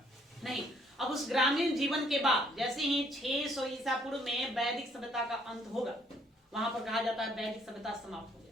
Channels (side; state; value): both; normal; correlation 0.65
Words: नहीं, अब उस ग्रामीण जीवन के बाद जैसे ही 600 ईसा पूर्व में वैदिक सभ्यता का अंत होगा, वहां पर कहा जाता है वैदिक सभ्यता समाप्त हो